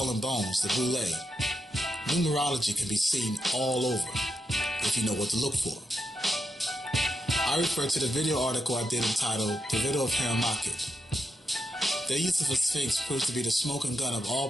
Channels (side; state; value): both; normal; correlation 0.85